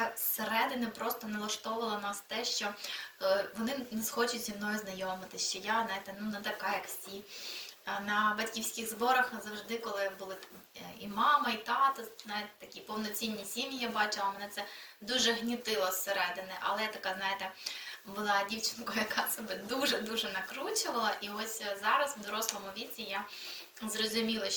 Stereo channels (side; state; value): both; identical; correlation 1.00